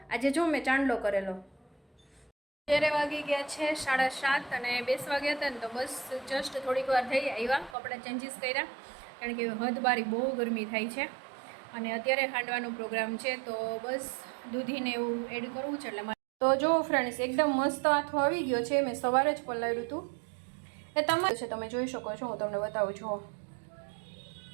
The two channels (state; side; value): drops out; left; at 7.8 s